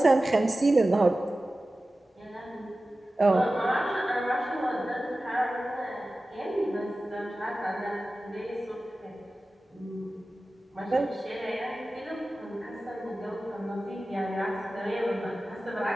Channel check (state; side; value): normal; both; correlation 0.95